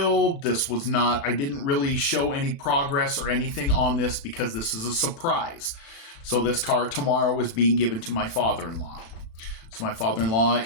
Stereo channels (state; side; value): late; right; 36 ms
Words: I didn't really show any progress or anything on this because this is a surprise. So this car tomorrow is being given to my father-in-law. So my father-in-law